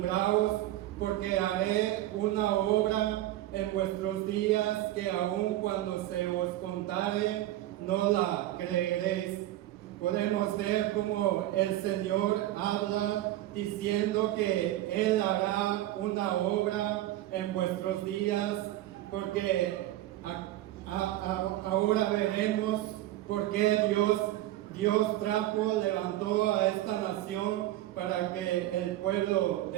porque haré una obra en vuestros días que aun cuando se os contare no la creeréis. Podemos ver cómo el Señor habla diciendo que Él hará una obra en vuestros días, porque ahora veremos por qué Dios levantó a esta nación para que el pueblo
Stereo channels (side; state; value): left; quieter; 14.8 dB